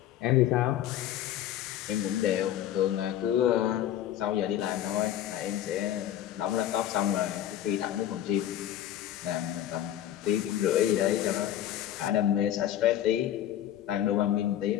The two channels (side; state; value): right; quieter; 11.6 dB